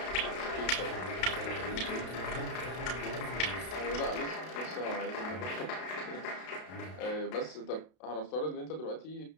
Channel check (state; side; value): late; right; 32 ms